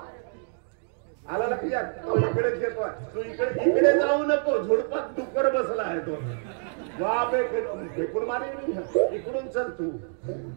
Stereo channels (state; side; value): silent; left; 60 dB below the other